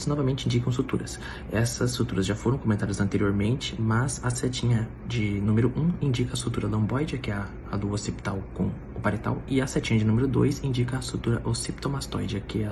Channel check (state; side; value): identical; both; correlation 1.00